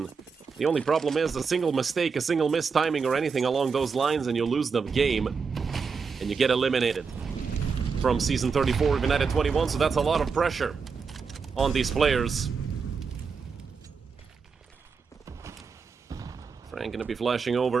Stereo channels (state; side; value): quieter; left; 5.4 dB